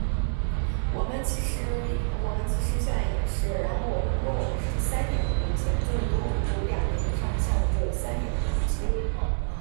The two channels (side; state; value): left; silent; 60 dB below the other